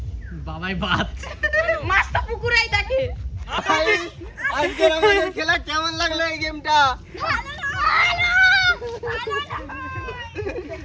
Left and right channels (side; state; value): both; identical; correlation 1.00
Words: বাবাই বাদ, মাছ তো পুকুরেই থাকে। আজকের আমাদের খেলা কেমন লাগলো এই গেমটা?